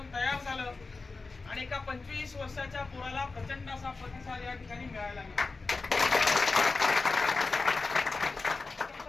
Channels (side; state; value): right; quieter; 3.9 dB